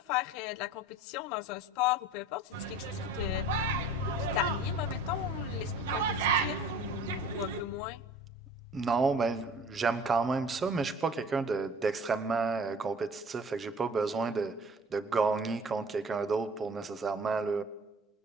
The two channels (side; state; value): both; normal; correlation 0.45